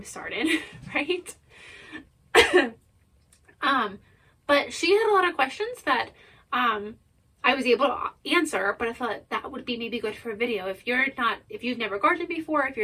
starting, right? But she had a lot of questions that I was able to answer, but I thought that would be maybe good for a video. If you've never gardened before, if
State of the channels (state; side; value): identical; both; correlation 1.00